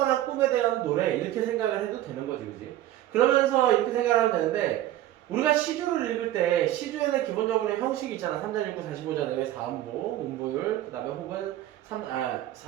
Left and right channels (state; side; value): quieter; left; 13.7 dB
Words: 꿈에 대한 노래 이렇게 생각을 해도 되는 거지, 그지? 그러면서 이렇게 생각을 하면 되는데, 우리가 시조를 읽을 때 시조에는 기본적으로 형식이 있잖아. 3자 6구 45자 내외 4음보, 음보율, 그 다음에 혹은